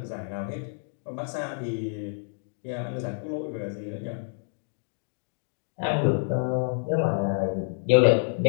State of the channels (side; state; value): right; silent; digital silence